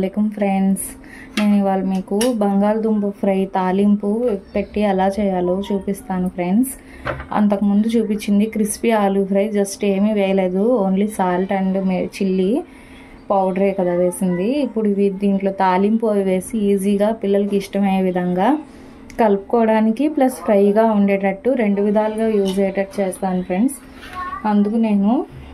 ఫ్రెండ్స్. నేను ఇవాళ మీకు బంగాళదుంప ఫ్రై తాలింపు పెట్టి ఎలా చేయాలో చూపిస్తాను ఫ్రెండ్స్. అంతకుముందు చూపించింది క్రిస్పీ ఆలూ ఫ్రై, జస్ట్ ఏమీ వేయలేదు, ఓన్లీ సాల్ట్ అండ్ చిల్లీ పౌడరే కదా వేసింది. ఇప్పుడు ఇవి దీంట్లో తాలింపు అవి వేసి ఈజీగా పిల్లలకి ఇష్టమయ్యే విధంగా కలుపుకోవడానికి ప్లస్ ఫ్రైగా ఉండేటట్టు రెండు విధాలుగా యూజ్ అయ్యేటట్టు చేస్తాను ఫ్రెండ్స్. అందుకు నేను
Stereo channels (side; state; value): both; identical; correlation 1.00